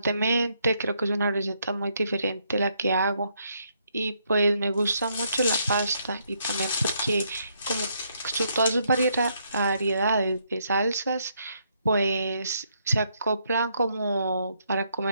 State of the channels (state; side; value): inverted; both; correlation -0.74